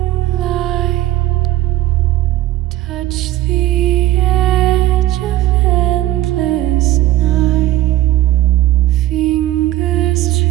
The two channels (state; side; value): quieter; left; 15.0 dB